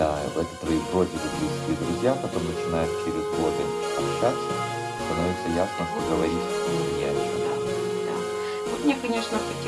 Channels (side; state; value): both; identical; correlation 1.00